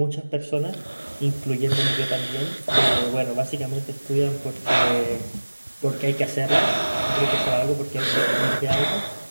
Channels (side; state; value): both; inverted; correlation -1.00